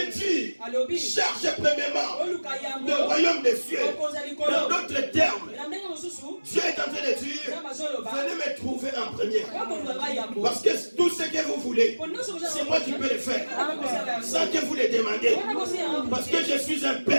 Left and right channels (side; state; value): both; inverted; correlation -1.00